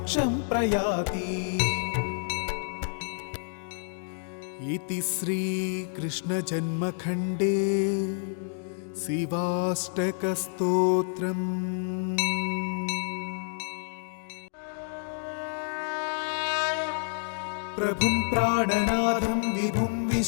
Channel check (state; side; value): silent; right; digital silence